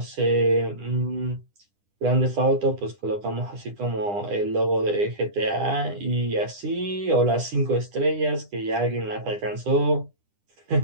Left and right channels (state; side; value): late; left; 10 ms